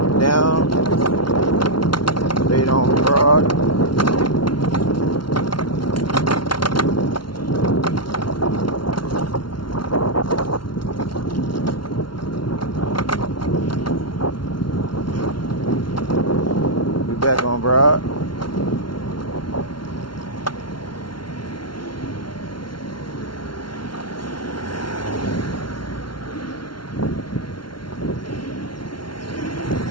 down, straight on Girard. We back on Girard.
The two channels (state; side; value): late; right; 0.72 ms